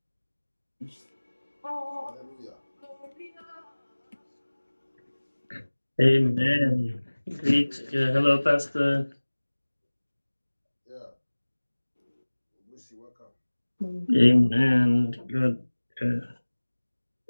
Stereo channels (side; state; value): both; inverted; correlation -1.00